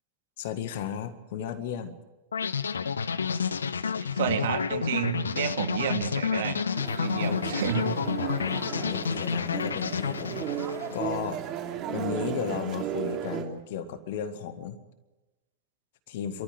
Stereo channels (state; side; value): inverted; both; correlation -0.47